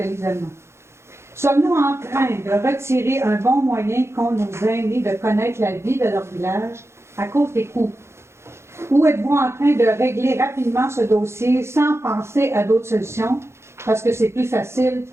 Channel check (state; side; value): late; left; 0.13 ms